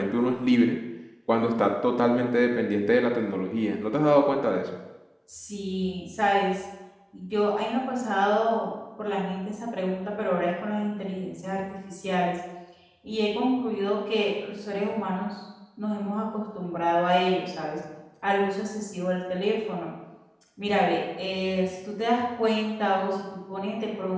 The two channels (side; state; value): both; identical; correlation 1.00